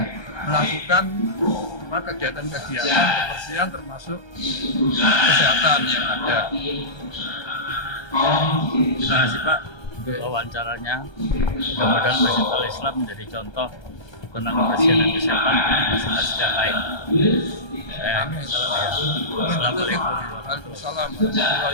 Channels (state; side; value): late; right; 1.3 ms